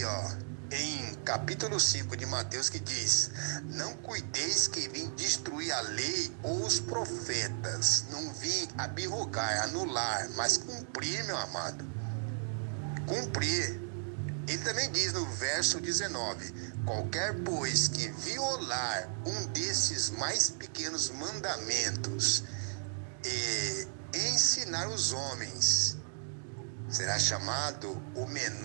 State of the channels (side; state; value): left; silent; digital silence